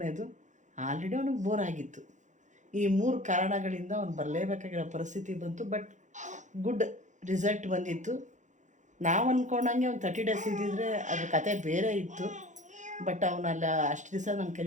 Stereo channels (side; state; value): left; late; 0.35 ms